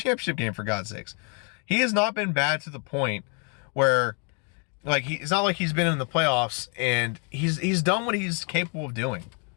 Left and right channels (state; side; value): quieter; right; 38.2 dB